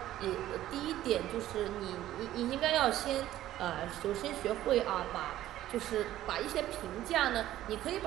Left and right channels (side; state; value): left; quieter; 13.7 dB